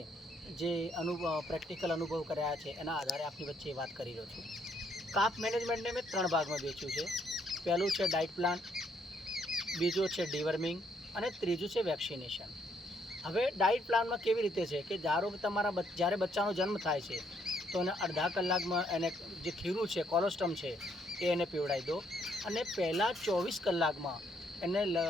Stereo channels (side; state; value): both; normal; correlation 0.71